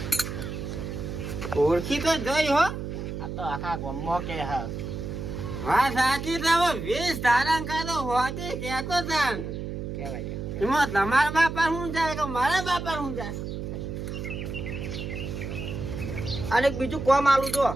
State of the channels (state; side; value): noise; right; hum, 6 dB below the sound